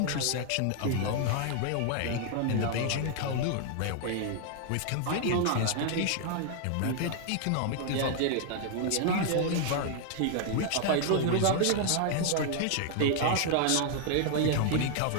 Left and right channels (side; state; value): both; different; correlation 0.00